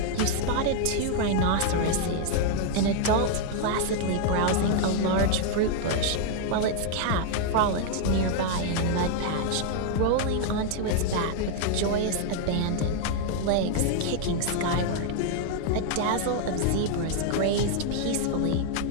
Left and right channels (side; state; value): both; different; correlation 0.00